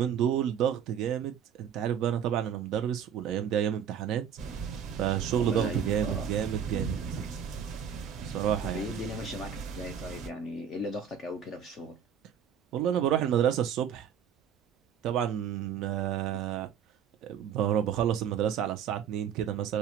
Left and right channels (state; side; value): quieter; left; 8.2 dB